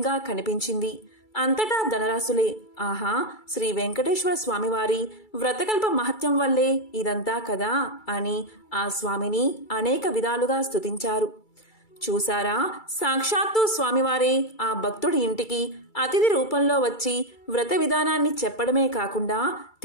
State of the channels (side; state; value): right; late; 2.3 ms